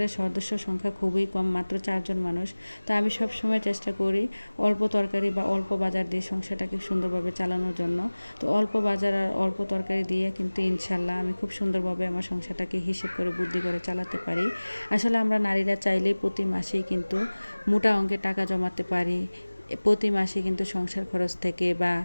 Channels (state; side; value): inverted; both; correlation -1.00